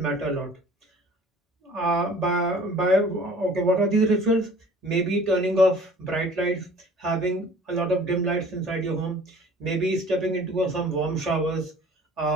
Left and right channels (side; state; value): both; normal; correlation 0.49